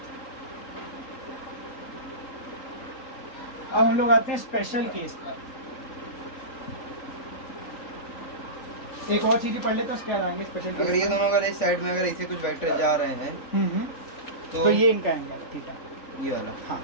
अब हम लोग आते हैं स्पेशल केस पर। एक और चीज पढ़ लेते हैं, उसके बाद आएंगे स्पेशल केस। अगर ये दोनों अगर इस साइड में अगर ऐसे कुछ वेक्टर जा रहे हैं तो ये इनका एंगल है, ठीक है? ये वाला। हाँ,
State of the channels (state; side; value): late; right; 3.9 ms